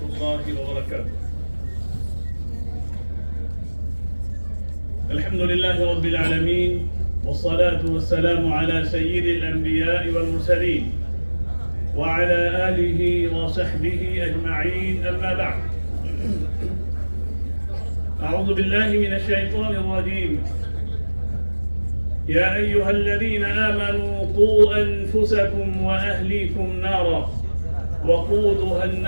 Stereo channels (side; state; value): both; inverted; correlation -1.00